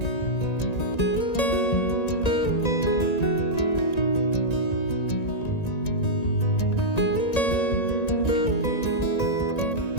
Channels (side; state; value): right; late; 1.9 ms